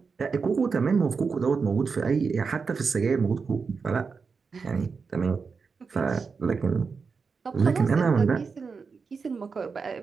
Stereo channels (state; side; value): quieter; left; 5.1 dB